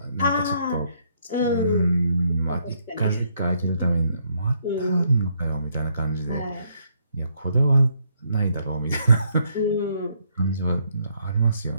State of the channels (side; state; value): both; inverted; correlation -0.72